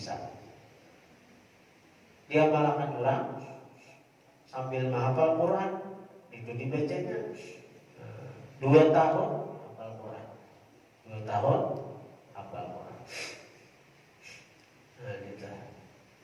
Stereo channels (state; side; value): identical; both; correlation 1.00